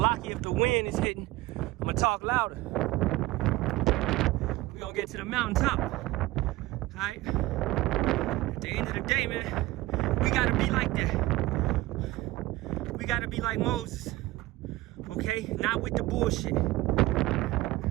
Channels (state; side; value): quieter; left; 18.6 dB